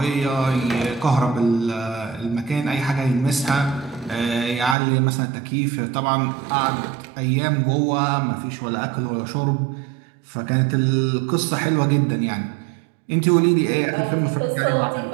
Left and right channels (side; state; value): left; drops out; at 4.8 s